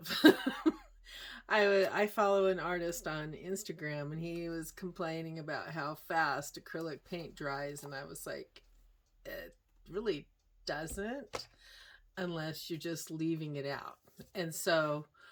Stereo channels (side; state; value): both; identical; correlation 1.00